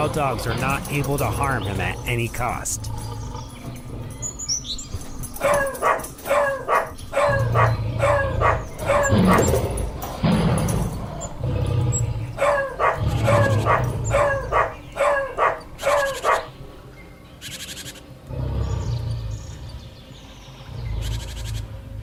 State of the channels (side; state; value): both; identical; correlation 1.00